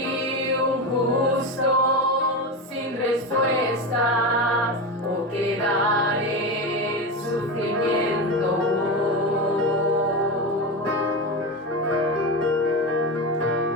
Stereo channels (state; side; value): normal; both; correlation 0.19